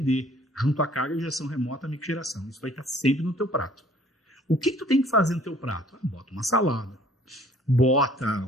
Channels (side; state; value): both; normal; correlation 0.56